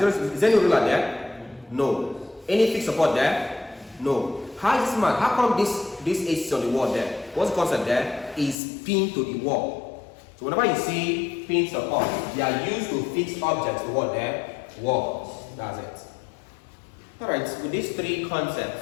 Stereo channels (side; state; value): right; drops out; at 8.6 s